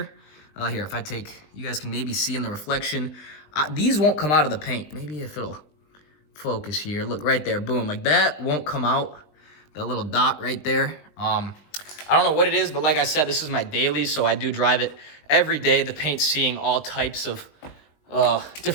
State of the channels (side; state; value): right; late; 20 ms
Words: Here, if I take, you guys can maybe see in the reflection. These won't come out of the paint. Maybe if it'll focus here. Look right there, boom. Like that won't come out. That little dot right there. I don't know what it is, but like I said, this is my daily, so I do drive it every day. The paint's seeing all types of,